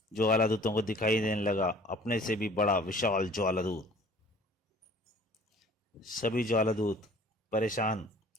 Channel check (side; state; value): both; normal; correlation 0.50